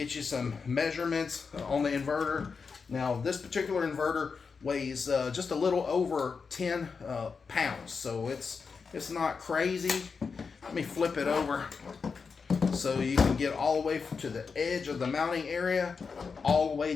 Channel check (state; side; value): quieter; right; 5.3 dB